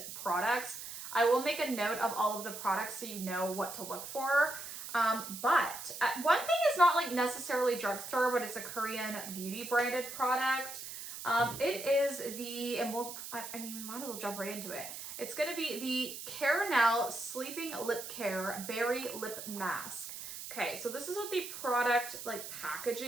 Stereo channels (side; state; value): right; noise; hiss, 9 dB below the sound